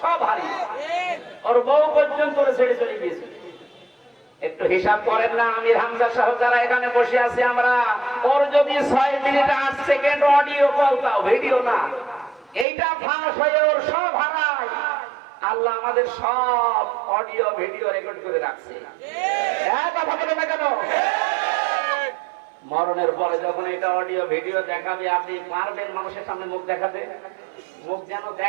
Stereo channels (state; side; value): drops out; left; at 12.7 s